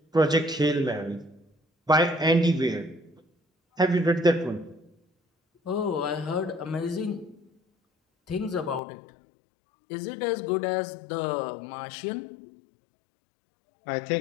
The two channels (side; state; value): right; drops out; at 8.8 s